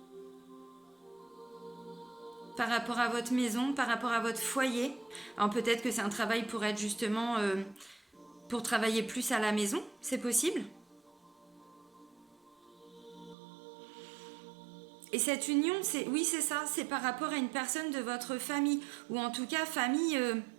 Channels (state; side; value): drops out; left; at 13.4 s